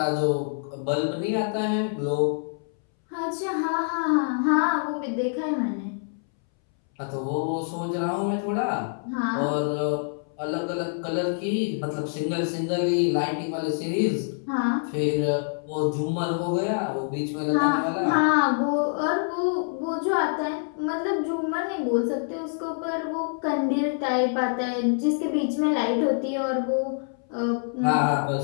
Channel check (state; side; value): silent; right; 61 dB below the other